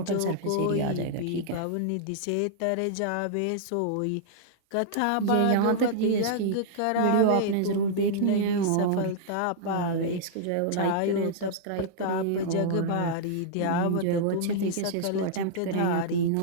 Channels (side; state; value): both; different; correlation -0.02